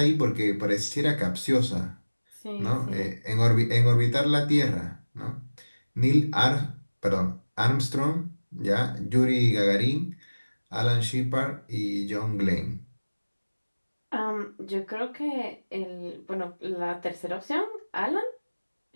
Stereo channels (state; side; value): inverted; both; correlation -1.00